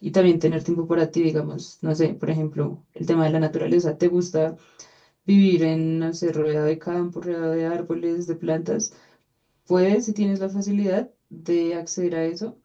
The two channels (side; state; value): both; identical; correlation 1.00